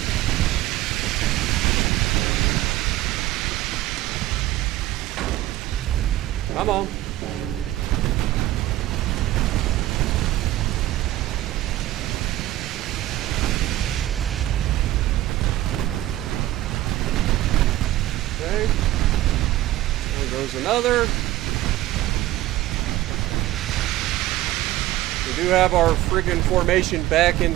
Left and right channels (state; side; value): quieter; left; 15.6 dB